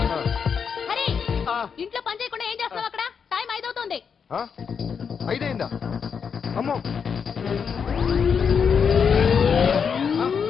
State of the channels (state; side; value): quieter; right; 6.5 dB